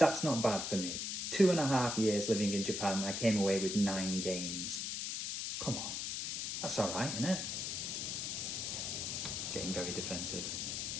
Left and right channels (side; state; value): left; noise; hiss, 2 dB below the sound